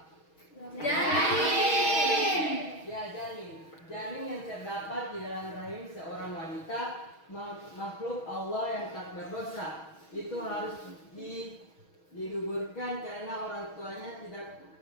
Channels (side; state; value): right; late; 6.3 ms